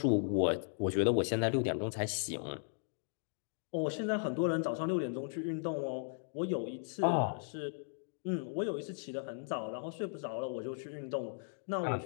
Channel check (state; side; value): silent; right; digital silence